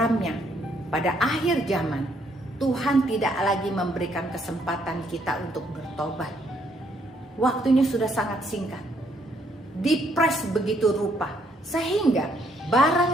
pada akhir zaman Tuhan tidak lagi memberikan kesempatan kita untuk bertobat. Waktunya sudah sangat singkat, dipres begitu rupa, sehingga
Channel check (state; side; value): normal; both; correlation 0.70